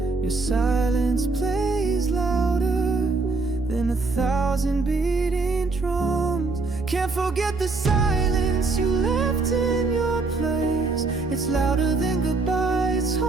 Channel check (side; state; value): left; quieter; 3.7 dB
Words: Your silence plays louder than 1,000 beating drums. Can't forget the silence you left in your place. It's louder than goodbye, it's